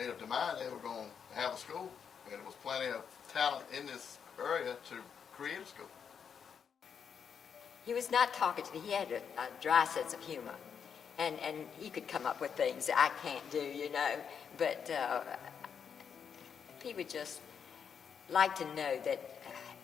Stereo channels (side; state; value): right; quieter; 7.1 dB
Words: up their mind they were going to have a school, and there was plenty of talent in this area to create a school. He was not talkative. He had a dry sense of humor, and he could come up with things I can't do, you know. But he would just like to know that